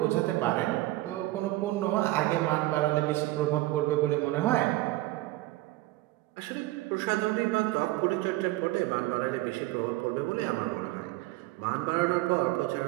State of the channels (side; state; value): left; quieter; 18.3 dB